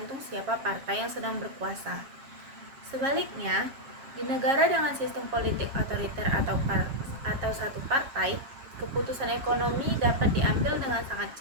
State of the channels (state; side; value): late; left; 7.4 ms